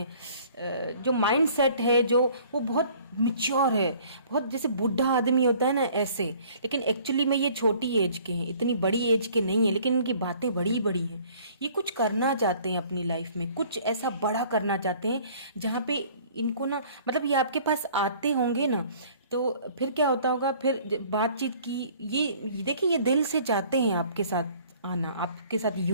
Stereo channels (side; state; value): both; inverted; correlation -0.54